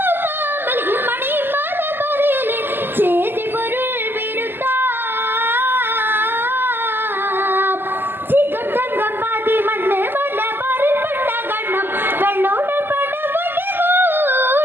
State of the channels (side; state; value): left; late; 0.097 ms